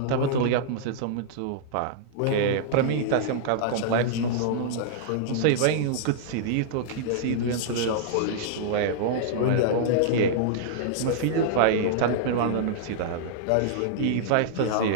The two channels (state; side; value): different; both; correlation -0.02